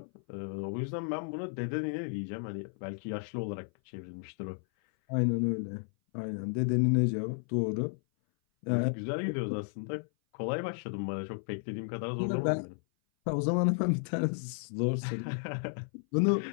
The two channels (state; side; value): silent; right; 56 dB below the other